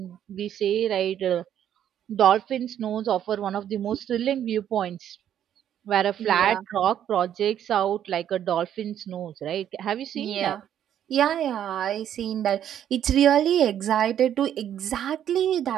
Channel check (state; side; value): quieter; left; 10.2 dB